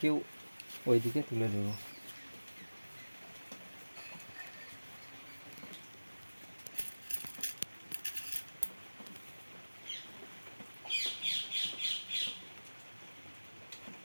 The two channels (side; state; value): both; inverted; correlation -1.00